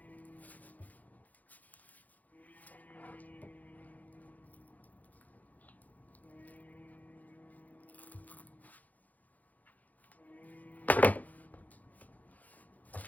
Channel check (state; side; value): late; right; 0.079 ms